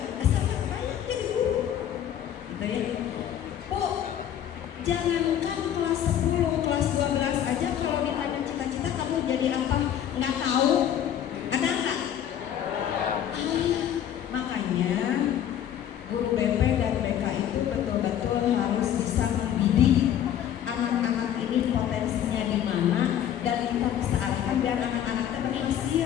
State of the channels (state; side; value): quieter; right; 10.3 dB